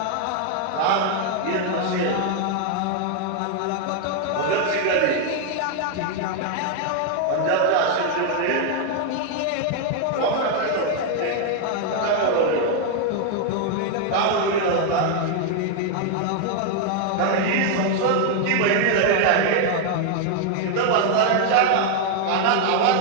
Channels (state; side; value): different; both; correlation 0.00